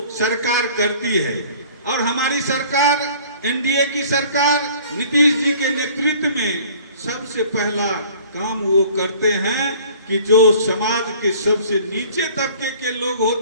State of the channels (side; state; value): both; inverted; correlation -0.50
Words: सरकार करती है। और हमारी सरकार, NDA की सरकार नीतीश जी के नेतृत्व में सबसे पहला काम वो करते हैं कि जो समाज के सबसे नीचे तबके के लोग